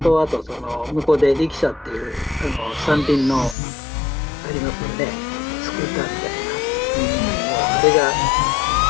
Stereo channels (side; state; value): right; drops out; at 3.6 s